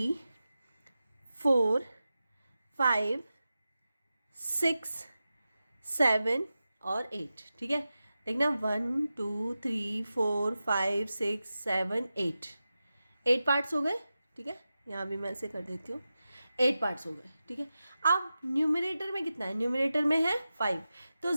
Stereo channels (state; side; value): inverted; both; correlation -0.93